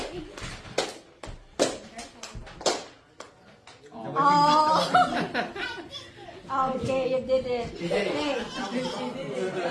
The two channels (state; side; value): identical; both; correlation 1.00